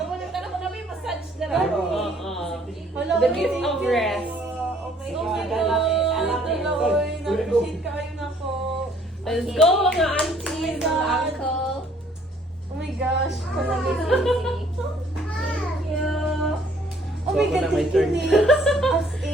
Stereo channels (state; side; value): normal; both; correlation 0.61